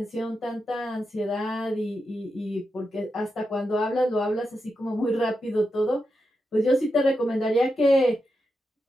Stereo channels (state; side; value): normal; both; correlation 0.87